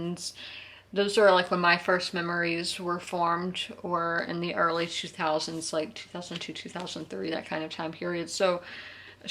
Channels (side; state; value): both; identical; correlation 1.00